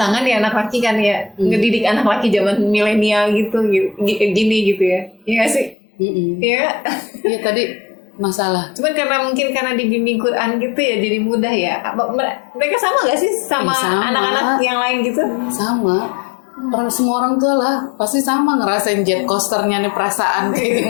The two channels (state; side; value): drops out; right; at 5.8 s